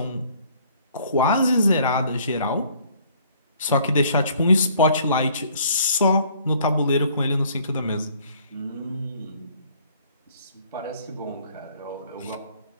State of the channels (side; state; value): both; inverted; correlation -0.59